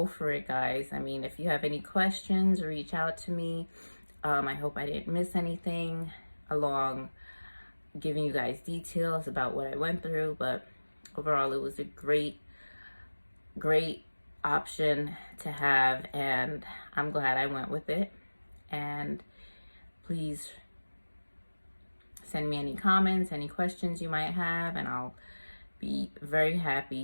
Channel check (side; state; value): both; inverted; correlation -1.00